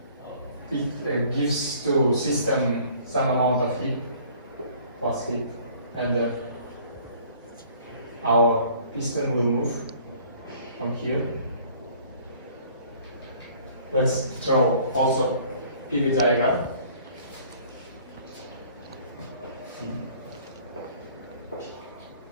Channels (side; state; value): both; inverted; correlation -0.54